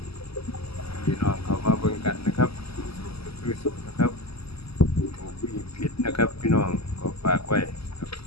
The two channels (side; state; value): right; late; 0.77 ms